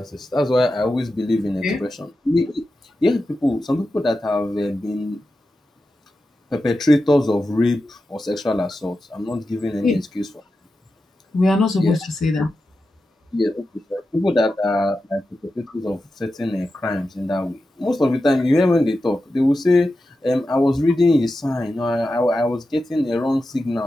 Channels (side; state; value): both; normal; correlation 0.91